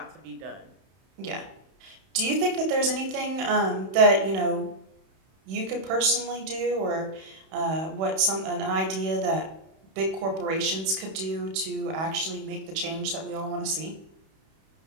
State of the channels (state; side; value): late; left; 31 ms